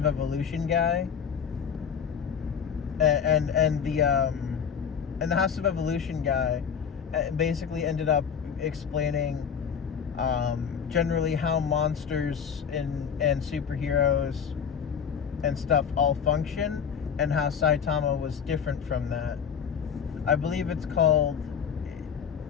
Evolution guy, and the House of Evolution guy basically ended up explaining generally how monsters and superheroes and stuff all function, and how Saitama was different from that. I believe it's called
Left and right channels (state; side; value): quieter; right; 7.3 dB